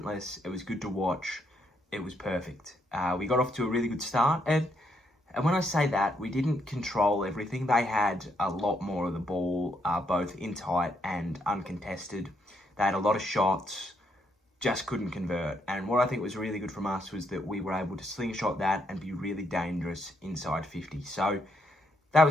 It was good to watch. It was perfect. We got off to a really good start. And when I say that, we didn't control everything. They had a lot more of the ball, both in tight and uncontested. They had a lot of shots, just couldn't convert. And what I think was really good from us was that we were able to slingshot that and be really dangerous inside 50. So that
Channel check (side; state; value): both; normal; correlation 0.75